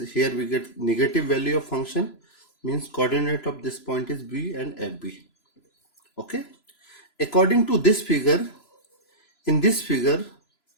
here we get negative value of function, means coordinate of this point is B and FB. Okay, according to this figure, in this figure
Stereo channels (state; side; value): late; right; 3.0 ms